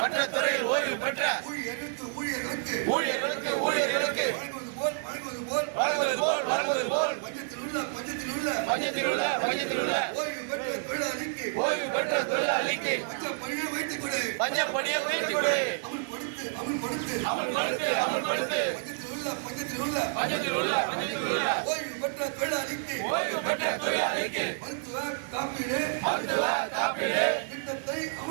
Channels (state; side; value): silent; left; digital silence